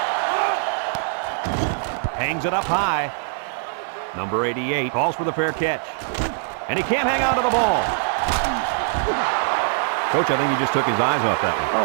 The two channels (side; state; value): left; silent; 64 dB below the other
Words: Hangs it up high. Number 88 calls for the fair catch. And he can't hang on to the ball. Coach, I think he just took his eyes off that one.